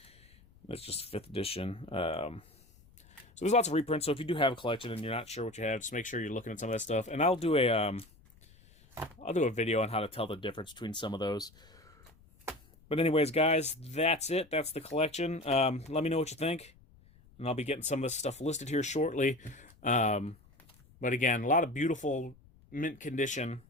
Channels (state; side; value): noise; left; rumble, 27 dB below the sound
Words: That's just 5th edition. So there's lots of reprints. So if you do have a collection and you're not sure what you have, just make sure you're looking at some of that stuff. And I'll do a video on how to tell the difference between some of those. But anyways, guys, that's it. That's the collection. Let me know what you think. And I'll be getting some of this stuff listed here shortly. But again, a lot of beautiful mint condition